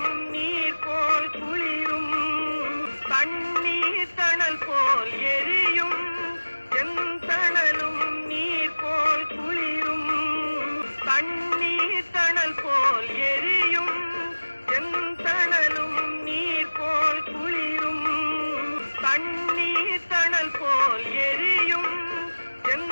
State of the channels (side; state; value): both; inverted; correlation -1.00